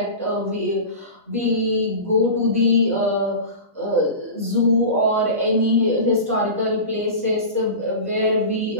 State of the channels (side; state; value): both; inverted; correlation -0.31